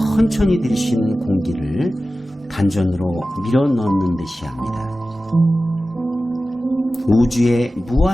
들이신 공기를 단전으로 밀어 넣는 듯이 합니다. 우주의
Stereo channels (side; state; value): both; normal; correlation 0.95